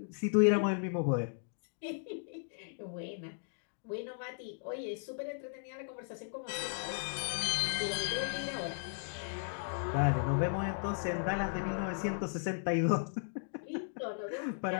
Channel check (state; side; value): silent; right; digital silence